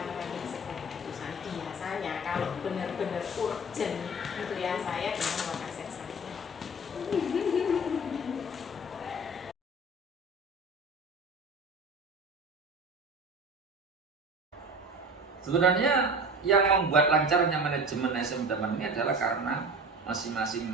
menyelesaikan keputusan. Biasanya kalau benar-benar urgent itu ya saya dengan wakasek saya. Sebenarnya yang membuat lancarnya manajemen SM Daman ini adalah karena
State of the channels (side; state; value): both; normal; correlation 0.36